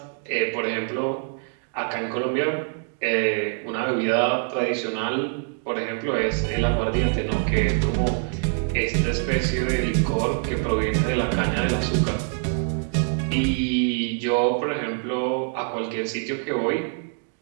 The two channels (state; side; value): silent; left; 56 dB below the other